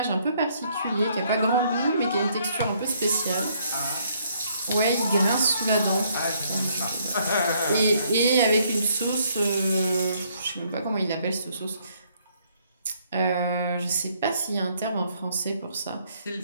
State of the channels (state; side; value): inverted; both; correlation -0.68